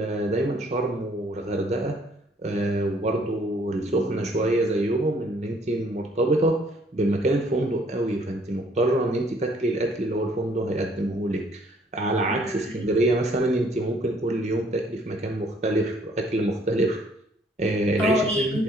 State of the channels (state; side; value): normal; both; correlation 0.62